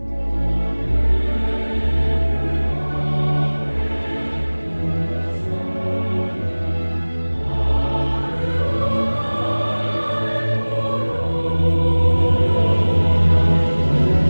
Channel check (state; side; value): inverted; both; correlation -1.00